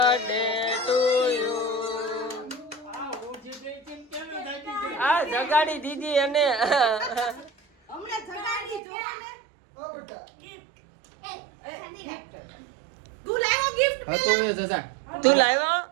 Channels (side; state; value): left; drops out; at 8.8 s